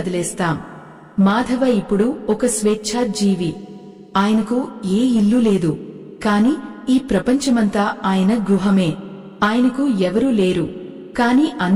మాధవ ఇప్పుడు ఒక స్వేచ్ఛా జీవి. ఆయనకు ఏ ఇల్లు లేదు, కాని ఈ ప్రపంచమంతా ఆయన గృహమే. ఆయనకు ఎవరూ లేరు, కాని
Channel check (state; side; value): identical; both; correlation 1.00